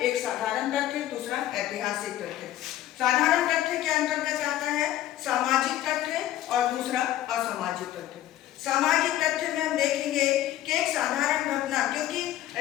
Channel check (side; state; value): right; quieter; 13.4 dB